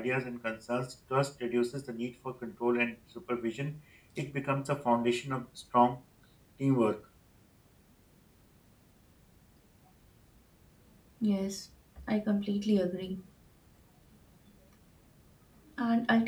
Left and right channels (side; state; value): both; identical; correlation 1.00